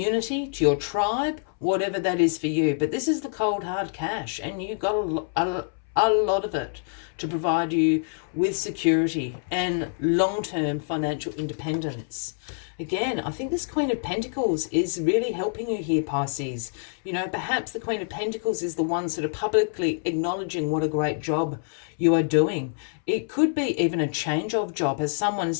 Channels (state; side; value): silent; right; 61 dB below the other